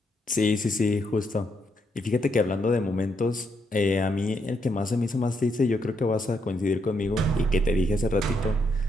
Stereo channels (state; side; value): normal; both; correlation 0.77